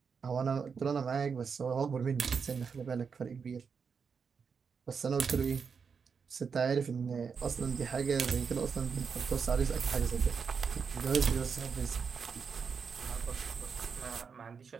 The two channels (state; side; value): quieter; left; 5.9 dB